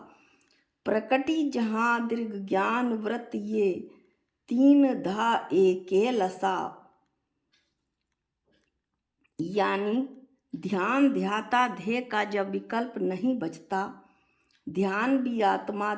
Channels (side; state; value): both; identical; correlation 1.00